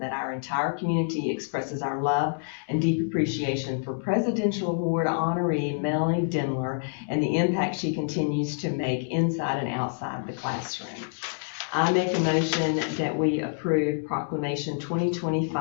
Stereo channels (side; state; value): right; silent; digital silence